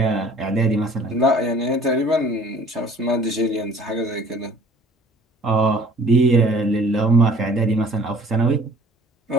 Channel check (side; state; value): both; normal; correlation 0.52